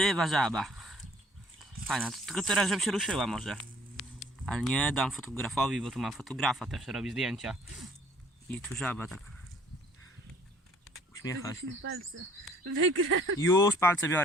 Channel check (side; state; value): both; normal; correlation 0.57